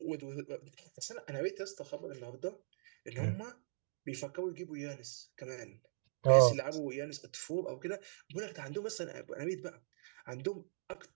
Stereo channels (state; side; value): silent; left; digital silence